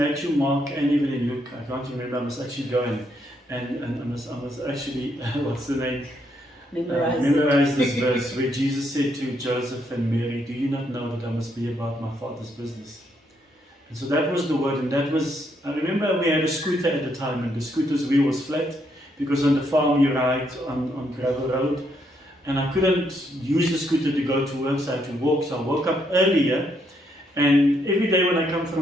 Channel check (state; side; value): normal; both; correlation 0.75